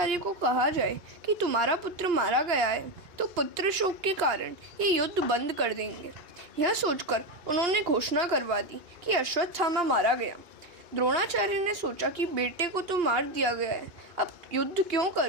को कहा जाए कि तुम्हारा पुत्र मारा गया है तो पुत्र शोक के कारण ये युद्ध बंद कर देंगे। यह सोचकर उन्होंने घोषणा करवा दी कि अश्वत्थामा मारा गया। द्रोणाचार्य ने सोचा कि बेटे को तो मार दिया गया है, अब युद्ध क्यों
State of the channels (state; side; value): late; left; 2.9 ms